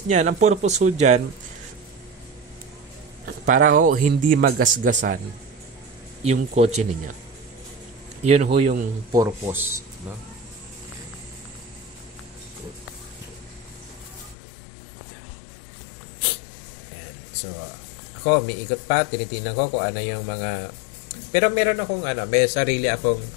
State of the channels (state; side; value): drops out; right; at 14.4 s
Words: niyan? Ang purpose ho dyan, para ho hindi magasgasan yung kotse niya. Yun ho yung purpose, no? Yan. So, ako, may ikot pa, tinitingnan ko kung ano yung mga, pero meron akong may sarili akong